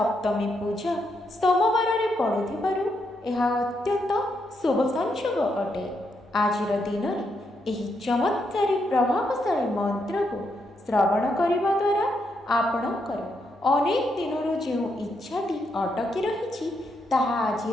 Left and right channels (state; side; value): normal; both; correlation 0.79